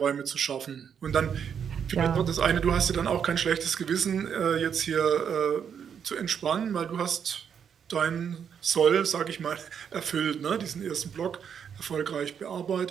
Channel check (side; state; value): left; quieter; 7.7 dB